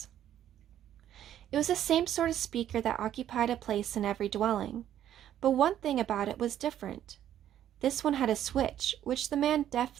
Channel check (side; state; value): left; quieter; 11.1 dB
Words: It was the same sort of speaker that occupied a place in every dwelling, but one thing about it was different. This one had a switch, which the man